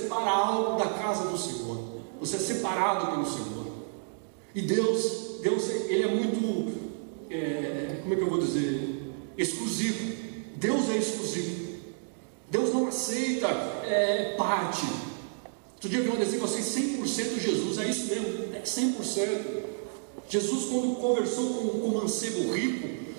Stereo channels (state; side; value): silent; left; digital silence